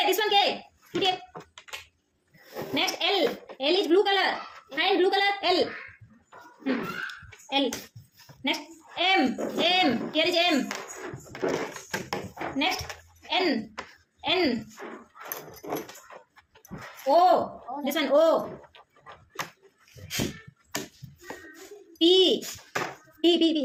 This one K. Put here. Next L. L is blue color. Find blue color. L. L. Next M. Here is M. Next N. O. This one O. P.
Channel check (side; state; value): both; identical; correlation 1.00